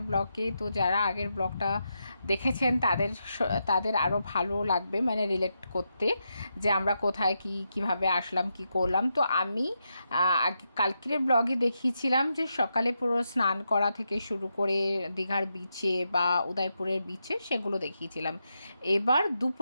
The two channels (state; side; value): inverted; both; correlation -0.85